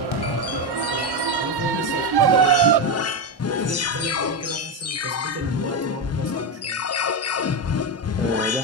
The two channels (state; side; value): normal; both; correlation 0.11